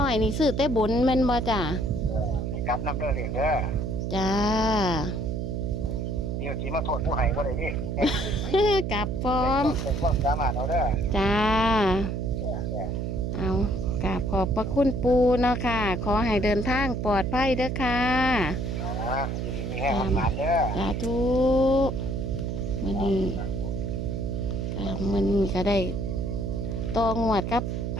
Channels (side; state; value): right; noise; hum, 2 dB below the sound